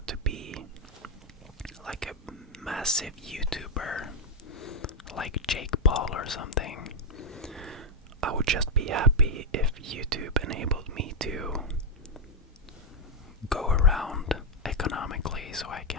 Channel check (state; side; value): normal; both; correlation 0.00